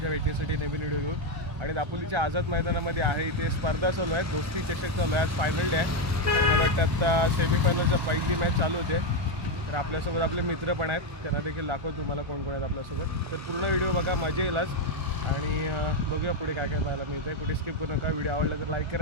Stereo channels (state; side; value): late; left; 1.4 ms